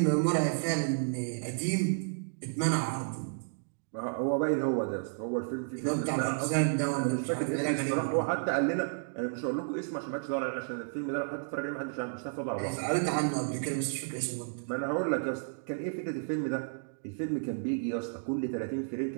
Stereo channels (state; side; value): silent; left; digital silence